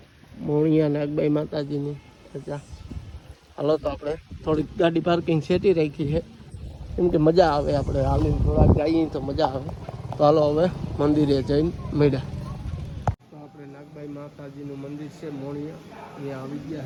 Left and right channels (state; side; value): identical; both; correlation 1.00